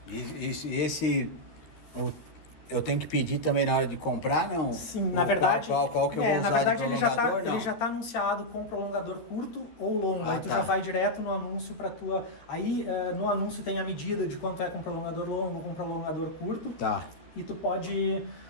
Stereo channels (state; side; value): late; right; 13 ms